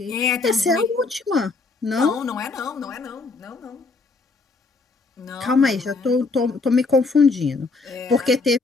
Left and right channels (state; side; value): quieter; right; 3.9 dB